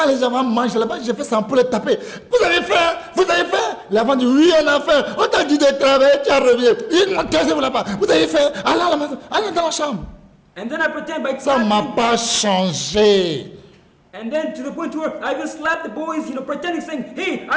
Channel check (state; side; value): identical; both; correlation 1.00